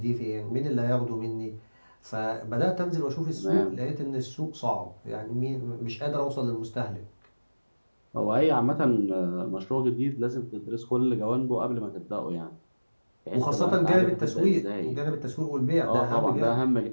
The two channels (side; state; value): both; inverted; correlation -1.00